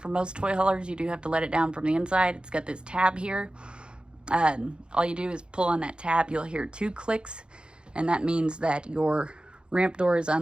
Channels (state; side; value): late; left; 0.052 ms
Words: from most toy haulers. You do have to let it down from the inside. It's got this tab here. All you do is pull on that tab. You'll hear 2 clicks, and that means that your ramp door is